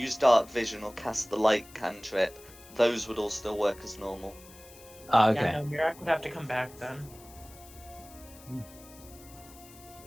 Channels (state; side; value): noise; left; hiss, 21 dB below the sound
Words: dark vision or cast the light cantrip, those would all still work as normal. Ah, Yeah, okay. no, Mirak would have to come back then.